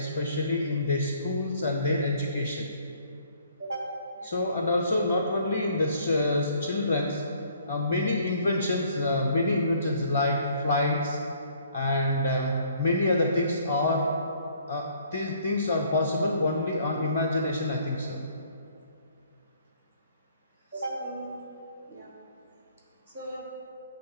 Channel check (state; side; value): inverted; both; correlation -0.61